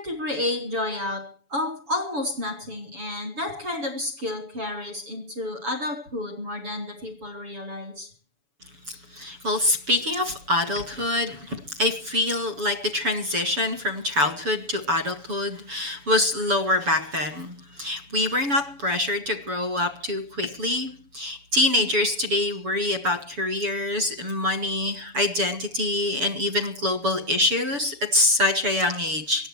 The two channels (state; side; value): late; left; 7.0 ms